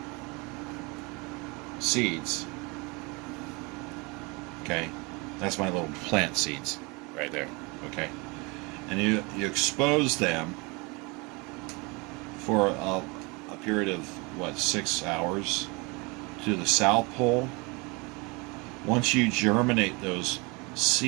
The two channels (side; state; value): left; quieter; 27.8 dB